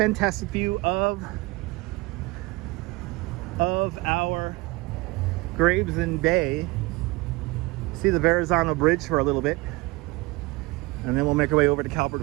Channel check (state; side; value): quieter; left; 23.1 dB